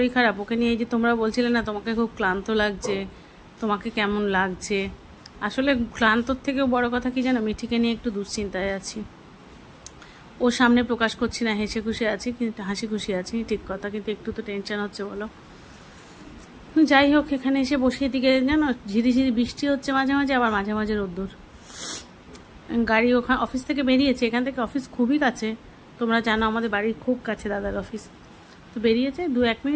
খারাপ, ওকে নিয়ে এই যে তোমরা বলছিলে না তোমাকে খুব ক্লান্ত লাগছে, তোমাকে কেমন লাগছে, আসলে ক্লান্তর থেকেও বড় কথা কি জানো, মিঠিকে নিয়ে একটু দুশ্চিন্তায় আছি। ওর সামনে প্রকাশ করছি না, হাসি খুশি আছি ঠিক কথা, কিন্তু একটু তো টেনশন হচ্ছে বলো। যাই হোক, এখানে এসে বসিয়ে দিকে জানো ঝিরিঝিরি বৃষ্টি হচ্ছে মাঝে মাঝে, আবার মাঝে মাঝে রোদ্দুর। গাড়ি ওখানে অফিস থেকে বেরিয়েছে, এখান থেকে অফিস খুবই কাছে, তোমরা জানো আমাদের বাড়ির খুব কাছে দাদার অফিস। তো বেরিয়েছে, 2-1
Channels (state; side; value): identical; both; correlation 1.00